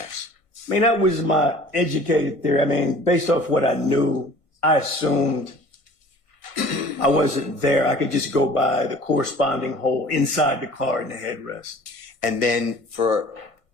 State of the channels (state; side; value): late; right; 1.6 ms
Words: I mean, that was my educated theory. I mean, based off what I knew, I assumed I wasn't there. I could just go by the corresponding hole inside the car in the headrest. And then for